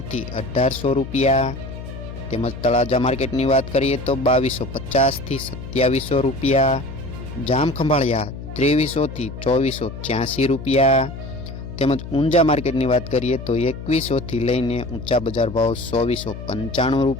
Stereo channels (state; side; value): noise; left; hum, 10 dB below the sound